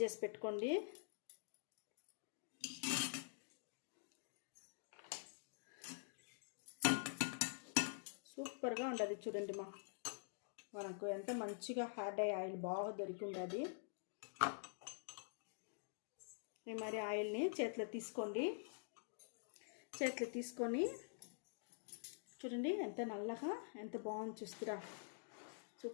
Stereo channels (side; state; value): right; silent; digital silence